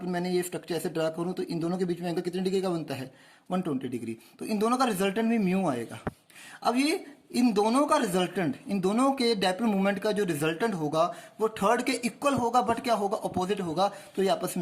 मैंने ये स्ट्रक्चर ऐसे ड्रा करूँ तो इन दोनों के बीच में एंगल कितने डिग्री का बनता है, 120 डिग्री। तो इन दोनों का रिजल्टेंट भी म्यू आएगा। अब ये इन दोनों का रिजल्टेंट, इन दोनों के डाइपोल मोमेंट का जो रिजल्टेंट होगा वो थर्ड के इक्वल होगा बट क्या होगा, अपोजिट होगा। तो ये आपस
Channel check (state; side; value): identical; both; correlation 1.00